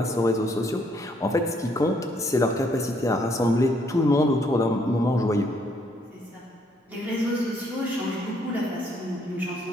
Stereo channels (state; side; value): normal; both; correlation 0.69